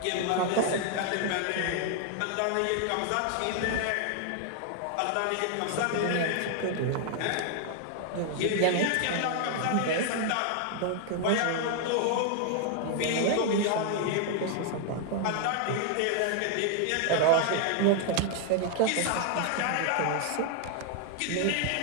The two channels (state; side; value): different; both; correlation 0.00